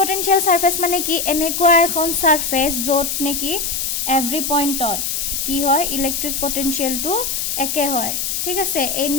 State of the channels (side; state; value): left; noise; hiss, 1 dB below the sound